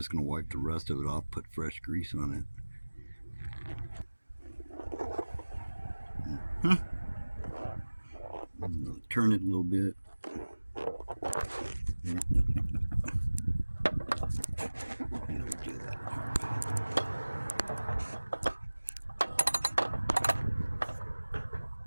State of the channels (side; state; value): both; inverted; correlation -1.00